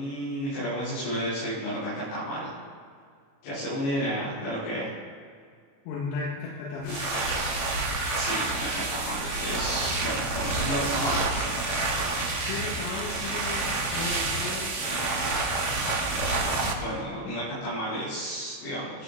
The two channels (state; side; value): late; right; 36 ms